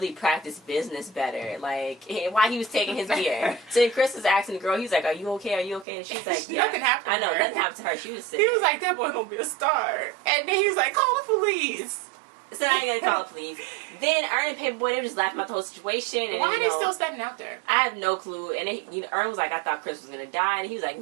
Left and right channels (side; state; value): left; drops out; at 5.9 s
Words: practice business better. Like, why he was taking his beer. So then Chris was asking the girl, he's like, are you okay? Are you okay? And she's like, yeah. Nothing happened I know, nothing happened to her. She was sick. He was like, that boy gonna be a star. And then he was like, call the police. So I ain't gonna call the police. Then Ern and Paperboy, they were just laughing about the whole situation. And, why are they still standing out there? I have no clue. And Ern was like, I thought Chris was gonna die. And he was like,